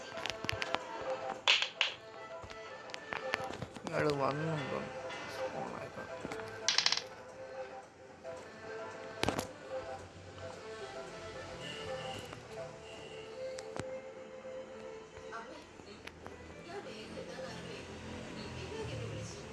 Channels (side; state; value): both; identical; correlation 1.00